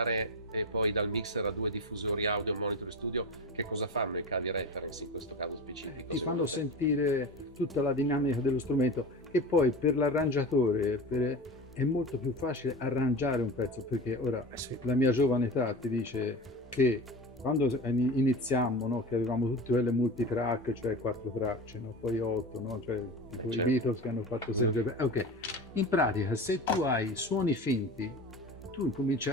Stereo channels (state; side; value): normal; both; correlation 0.29